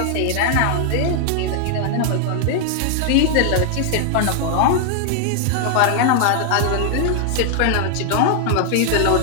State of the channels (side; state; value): both; different; correlation 0.00